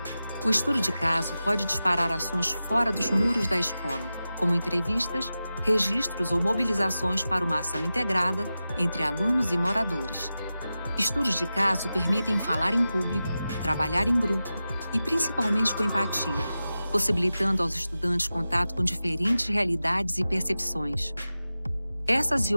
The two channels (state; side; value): inverted; both; correlation -0.93